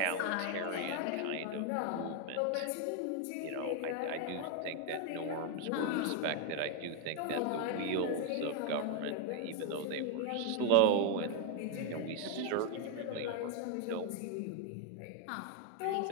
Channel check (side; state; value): both; different; correlation 0.01